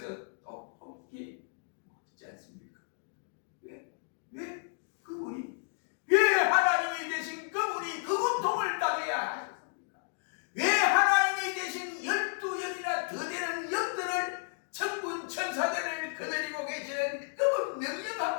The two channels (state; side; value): silent; right; 56 dB below the other